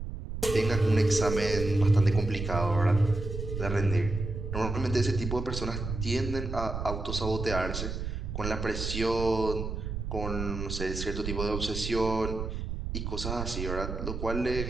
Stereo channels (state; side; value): noise; right; rumble, 5 dB below the sound